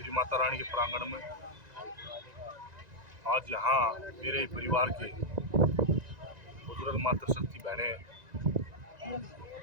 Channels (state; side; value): late; left; 1.9 ms